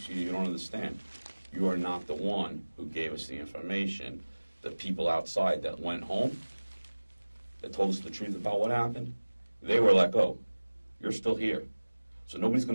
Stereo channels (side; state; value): both; inverted; correlation -1.00